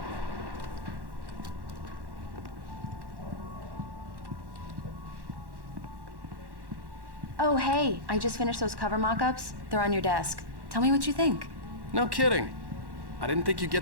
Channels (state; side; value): late; left; 1.1 ms